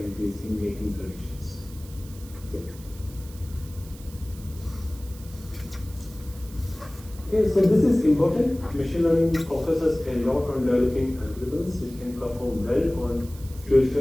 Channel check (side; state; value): right; noise; hiss, 20 dB below the sound